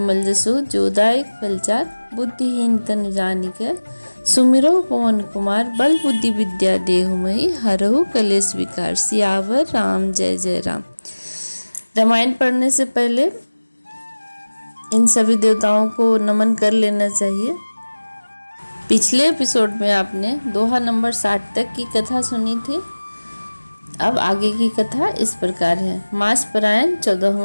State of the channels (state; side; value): inverted; both; correlation -1.00